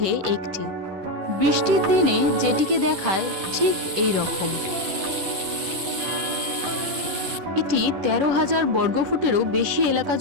একটি। বৃষ্টির দিনে যেটিকে দেখায় ঠিক এই রকম। এটি 13,000 বর্গফুটেরও বেশি এলাকা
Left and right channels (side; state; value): left; late; 10 ms